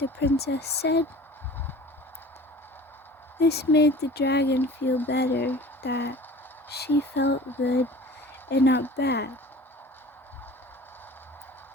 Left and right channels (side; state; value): both; normal; correlation 0.42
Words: princess said. This made the dragon feel better, that she felt good and not bad.